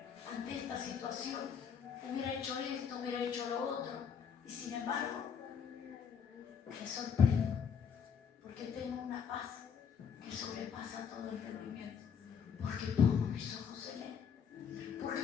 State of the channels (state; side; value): quieter; right; 7.0 dB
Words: ante esta situación, hubiera hecho esto, hubiera hecho lo otro, y sin embargo me sorprendo porque tengo una paz que sobrepasa todo entendimiento, porque pongo mis ojos en Él. Porque